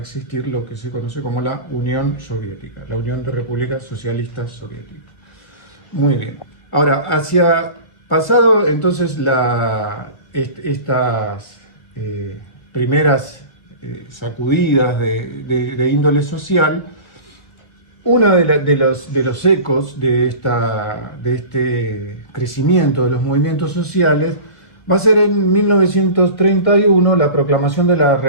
lo que se conoce como la Unión Soviética, la Unión de Repúblicas Socialistas Soviéticas. Muy bien. Ahora, pasado entonces estas primeras sacudidas de índole social, uno de los ecos de este crecimiento de los movimientos sociales va a ser en 1931 la proclamación de la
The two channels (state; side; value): late; right; 1.3 ms